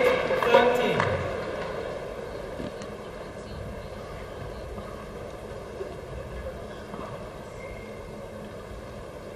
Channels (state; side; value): identical; both; correlation 1.00